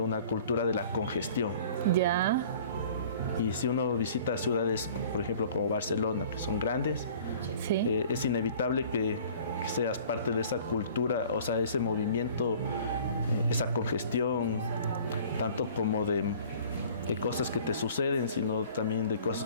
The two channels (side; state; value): both; inverted; correlation -0.49